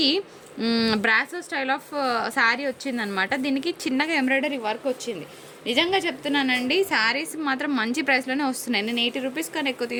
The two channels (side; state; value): both; identical; correlation 1.00